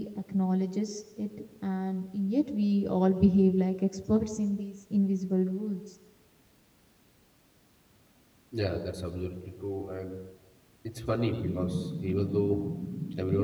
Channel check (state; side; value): identical; both; correlation 1.00